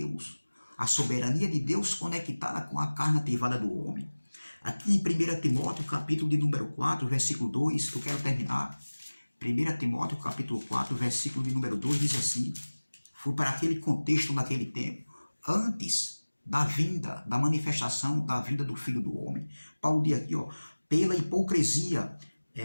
a soberania de Deus conectada com a carne ativada do homem. Aqui em 1 Timóteo, capítulo de número 4, versículo 2, que eu quero terminar. 1 Timóteo, capítulo 4, versículo de número 2, diz assim, foi para aquele contexto naquele tempo, antes da vinda, da manifestação da vinda do Filho do Homem. Paulo diz aqui, ó, pela hipocrisia,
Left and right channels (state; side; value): inverted; both; correlation -1.00